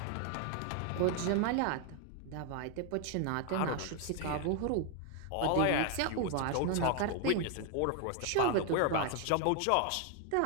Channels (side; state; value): both; different; correlation 0.00